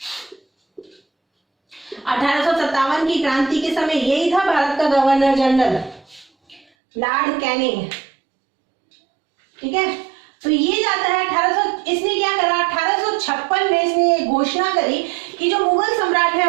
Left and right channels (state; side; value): drops out; left; at 6.7 s